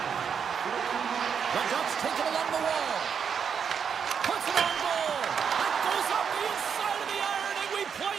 The Ducks take it along the wall. Puts it on goal. It goes up the inside of the iron, and we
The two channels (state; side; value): quieter; left; 7.0 dB